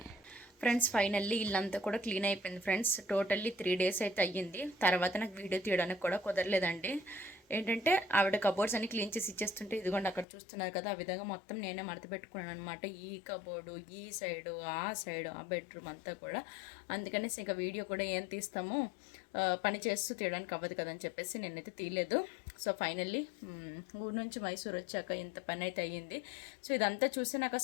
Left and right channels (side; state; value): right; drops out; at 10.2 s